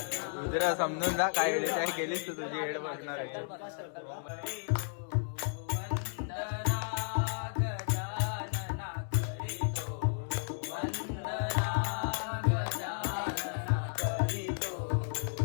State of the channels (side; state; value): right; silent; digital silence